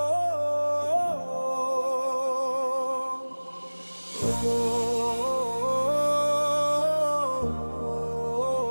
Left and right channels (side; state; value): both; inverted; correlation -1.00